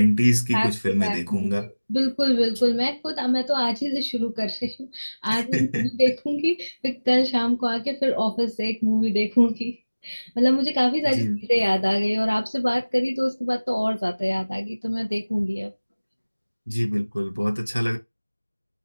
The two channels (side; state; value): both; inverted; correlation -1.00